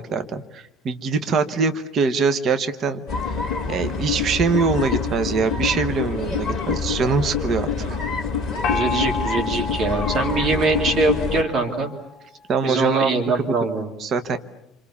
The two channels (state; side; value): normal; both; correlation 0.48